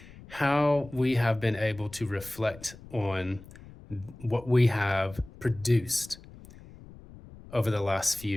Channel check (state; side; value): noise; left; rumble, 19 dB below the sound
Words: how we have been able to reflect on what we have produced over the last